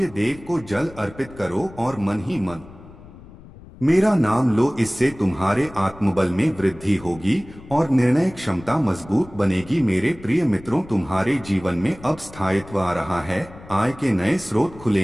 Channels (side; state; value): left; noise; rumble, 19 dB below the sound